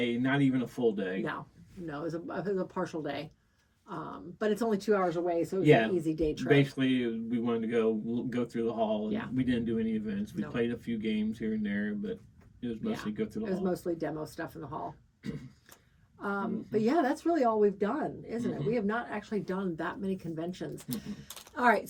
not even a full day. No, it was a partial day. But it's only 2 hours away, so it was an easy day trip. Basically, we wanted to go through the hall. And we didn't do any events. We played a few games here and there, but it was mostly go through the hall. It was mostly demo stuff in the hall. But yeah, that's really all we've done, isn't it? We have not actually done that many conventions. All right,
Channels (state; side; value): identical; both; correlation 1.00